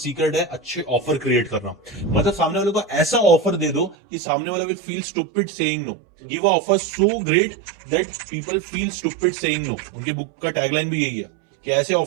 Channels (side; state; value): left; drops out; at 4.0 s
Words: है अच्छे ऑफर क्रिएट करना। मतलब सामने वाले को ऐसा ऑफर दे दो कि सामने वाला will feel stupid saying no. Give a offer so great that people feel stupid saying no. उनकी बुक का टैगलाइन भी यही है कि ऐसे